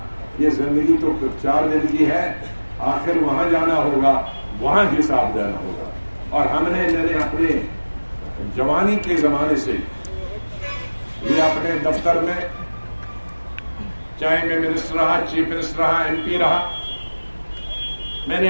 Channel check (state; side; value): inverted; both; correlation -1.00